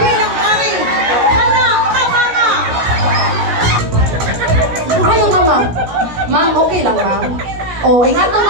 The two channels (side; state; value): left; late; 17 ms